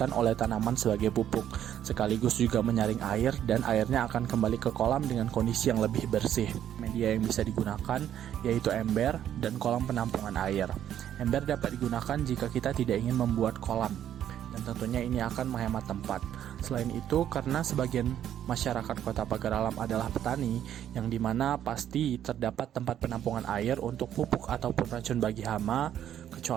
oleh tanaman sebagai pupuk, sekaligus juga menyaring air dan airnya akan kembali ke kolam dengan kondisi yang lebih bersih. Media yang bisa digunakan yaitu ember dan kolam penampungan air. Ember dapat digunakan jika kita tidak ingin membuat kolam, dan tentunya ini akan menghemat tempat. Selain itu, karena sebagian masyarakat Kota Pagar Alam adalah petani, yang dimana pasti terdapat tempat penampungan air untuk pupuk ataupun racun bagi hama,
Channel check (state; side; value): quieter; left; 10.5 dB